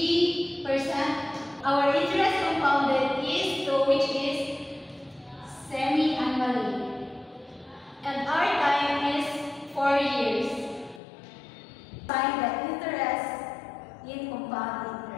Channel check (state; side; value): drops out; right; at 11.0 s